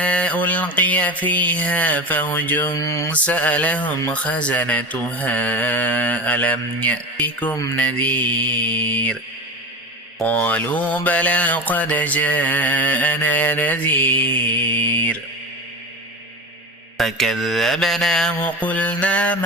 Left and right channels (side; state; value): both; normal; correlation 0.27